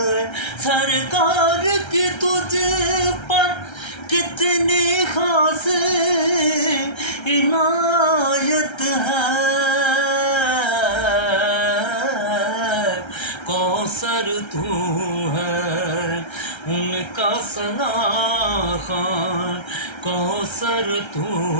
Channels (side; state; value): right; late; 1.3 ms